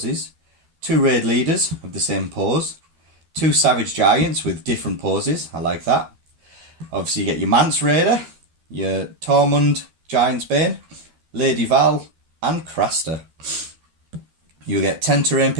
2 raid leaders of the same pose, 2 savage giants with different poses. I like that. Obviously, you get your Mance Rayder, your Tormund Giantsbane, Lady Val, and Craster. You'll get 10 terrain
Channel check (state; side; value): late; left; 12 ms